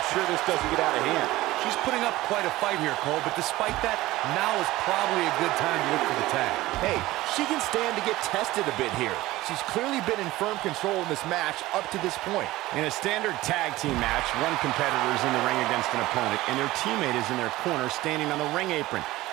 sure this doesn't get out of hand. She's putting up quite a fight here, Cole, but despite that, now is probably a good time to look for the tag. Hey, she can stand to get tested a bit here. She's clearly been in firm control in this match up to this point. In a standard tag team match, one competitor is in the ring against an opponent, and their teammate is in their corner standing on the ring apron.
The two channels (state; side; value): quieter; left; 17.7 dB